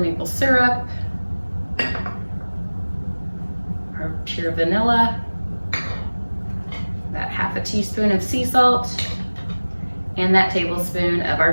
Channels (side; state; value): both; inverted; correlation -1.00